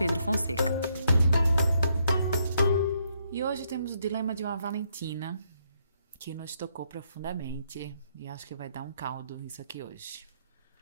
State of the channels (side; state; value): both; inverted; correlation -0.74